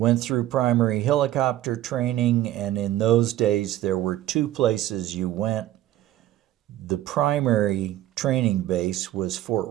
through primary helicopter training, and in those days there were two places you went. The primary training base was Fort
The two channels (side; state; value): left; quieter; 13.8 dB